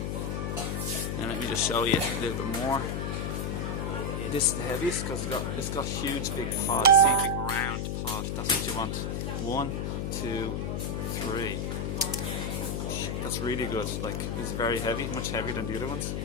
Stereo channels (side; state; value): left; noise; hum, 1 dB below the sound